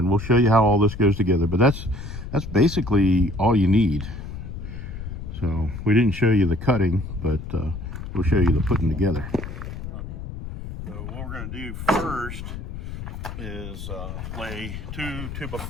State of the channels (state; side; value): noise; left; rumble, 8 dB below the sound